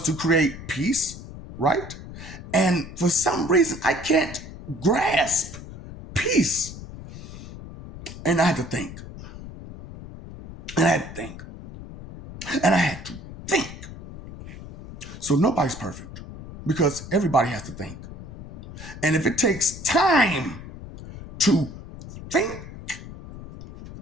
to create peace, right? And for some reason, I can't grasp peace. And I had to think. And I had to think. And I had to think. So nobody's perfect because everybody has to think. And if it takes time to think,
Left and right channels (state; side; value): noise; left; rumble, 13 dB below the sound